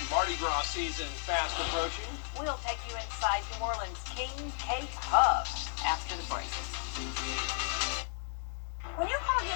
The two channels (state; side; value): silent; right; 55 dB below the other